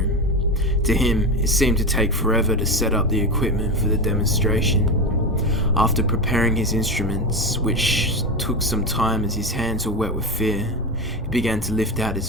To him, it seemed to take forever to set up the equipment for the demonstration. After preparing his instruments, which took some time as his hands were wet with fear, he began to lift out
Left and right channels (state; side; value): normal; both; correlation 0.18